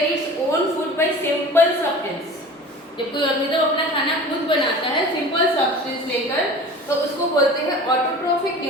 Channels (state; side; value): normal; both; correlation 0.39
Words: its own food by simple substance. जब कोई ऑर्गेनिज्म अपना खाना खुद बनाता है सिंपल सब्सटेंस लेकर, तो उसको बोलते हैं ऑटोट्रॉफिक